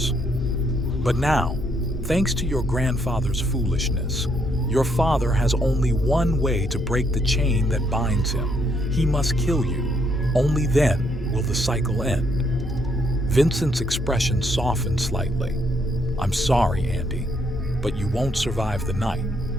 But now, thanks to your grandfather's foolishness, your father has only one way to break the chain that binds him. He must kill you. Only then will the cycle end." Vincent's expression softened slightly. "I'm sorry, Andy, but you won't survive the night."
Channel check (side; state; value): both; normal; correlation 0.72